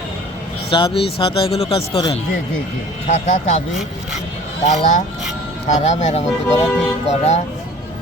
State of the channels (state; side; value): normal; both; correlation 0.47